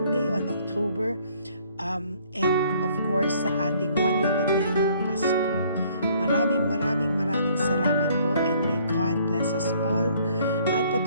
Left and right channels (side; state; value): both; inverted; correlation -0.61